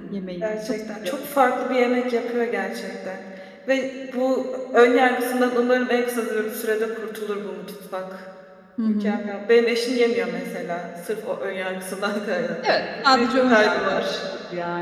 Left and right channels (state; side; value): identical; both; correlation 1.00